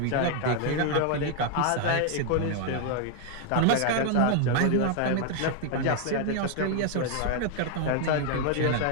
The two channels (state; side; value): different; both; correlation 0.00